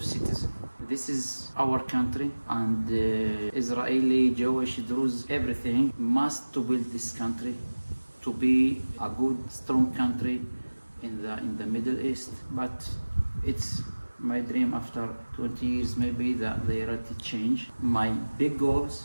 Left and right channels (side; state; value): both; inverted; correlation -1.00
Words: citizen. This is our country, and Israeli, Jewish, Druze, everything must to build this country to be a good, strong country in the Middle East. But it's my dream after 20 years, maybe the reality change. My big